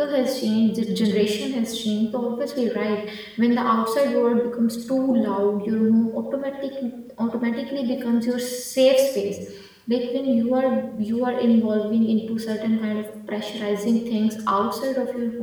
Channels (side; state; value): both; identical; correlation 1.00